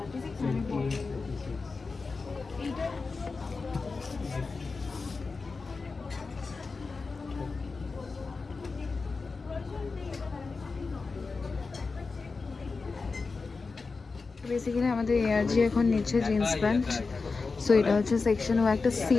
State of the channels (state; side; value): quieter; right; 4.2 dB